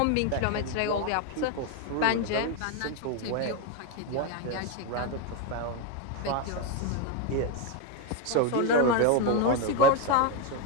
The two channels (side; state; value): both; different; correlation 0.02